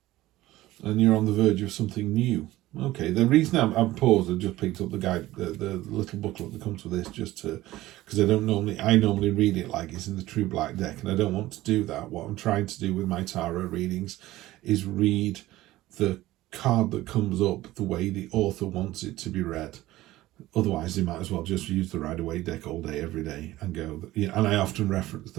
And you're on the verge of something new. Okay, the reason I'm paused, I just picked up the guide, the little booklet that comes with this, just to, because I normally read it like it's in the True Black deck, and I don't want to do that. What I'm trying to do with my tarot readings is read the card that comes up the way the author wants it to be read. Otherwise, they might as well just use the Rider-Waite deck all day, every day, and go. You know, and I often reference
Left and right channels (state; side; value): quieter; left; 16.6 dB